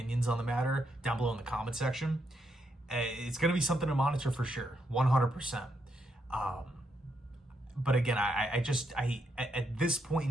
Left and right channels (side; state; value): both; normal; correlation 0.79